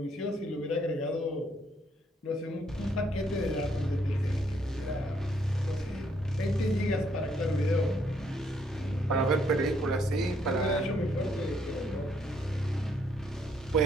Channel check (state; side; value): normal; both; correlation 0.70